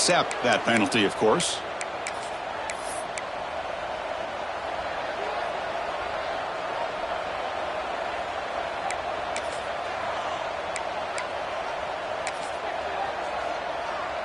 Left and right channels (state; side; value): identical; both; correlation 1.00